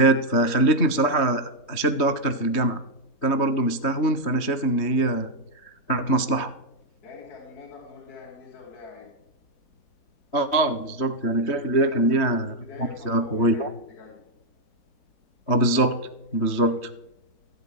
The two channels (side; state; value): right; late; 3.3 ms